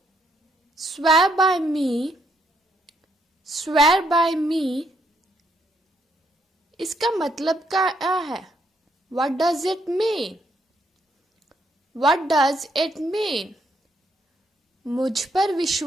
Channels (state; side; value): normal; both; correlation 0.74